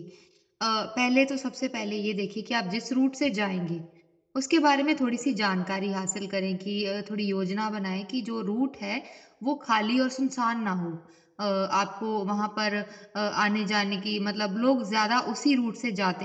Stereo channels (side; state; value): both; identical; correlation 1.00